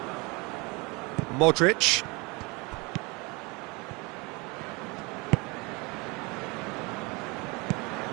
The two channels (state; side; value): quieter; left; 27.1 dB